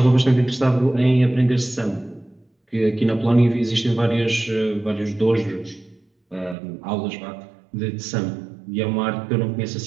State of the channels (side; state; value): left; drops out; at 6.6 s